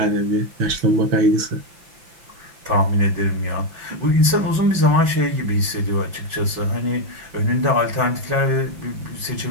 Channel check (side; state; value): left; late; 5.8 ms